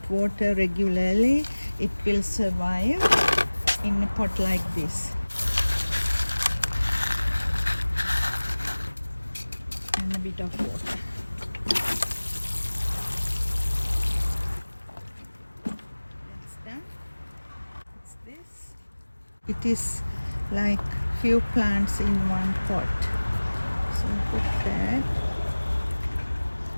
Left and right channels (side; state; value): both; inverted; correlation -1.00